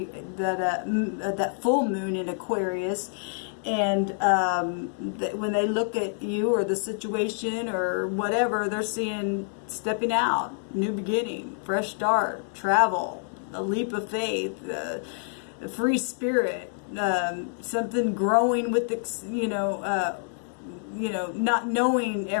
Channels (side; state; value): right; silent; digital silence